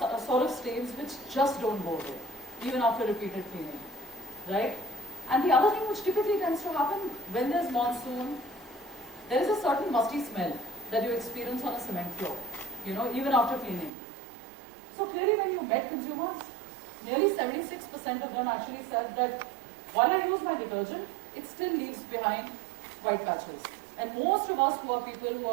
sort of stains which just don't go away, even after repeated cleaning, right? And the other thing which typically tends to happen when there's monsoon, there is a certain musty smell that you experience on a cement floor, even after cleaning. So clearly when you met consumers, nearly 76% of them actually said that while I use my detergent, it still leaves behind white patches. And most of us who are people who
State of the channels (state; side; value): drops out; left; at 13.9 s